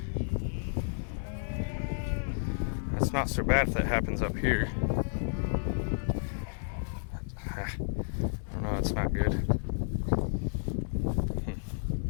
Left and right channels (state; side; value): silent; right; digital silence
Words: That's not so bad if that happens up here. I don't know, it's not good.